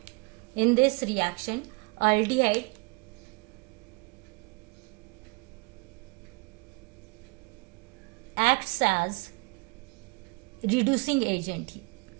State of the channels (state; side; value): quieter; left; 29.0 dB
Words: In this reaction, aldehyde acts as reducing agent here.